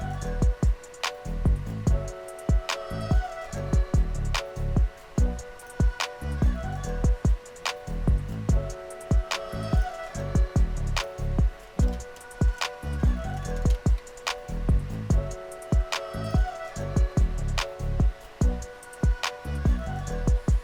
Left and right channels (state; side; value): identical; both; correlation 1.00